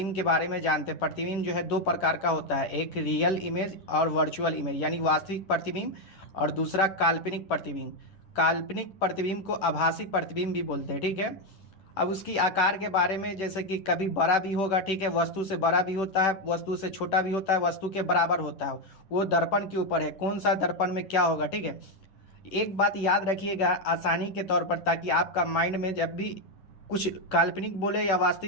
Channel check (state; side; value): late; right; 10 ms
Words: के बारे में जानते हैं। प्रतिबिंब जो है दो प्रकार का होता है, एक रियल इमेज और वर्चुअल इमेज यानी वास्तविक प्रतिबिंब, और दूसरा काल्पनिक प्रतिबिंब। काल्पनिक प्रतिबिंब को आभासी प्रतिबिंब भी बोलते हैं। ठीक है, अब उसकी आकार के बारे में, जैसे कि कभी बड़ा भी होगा, ठीक है, वस्तु से बड़ा भी होता है, वस्तु से छोटा भी होता है, वस्तु के बराबर होता है। वो दर्पण के ऊपर है, कौन सा दर्पण में क्या होगा। ठीक है, एक बात याद रखिएगा आसानी के तौर पर, ताकि आपका माइंड में जब भी कुछ काल्पनिक बोले या